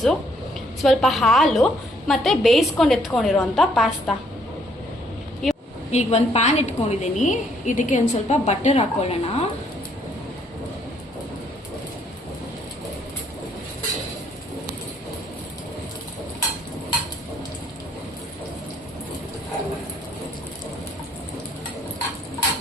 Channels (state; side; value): normal; both; correlation 0.67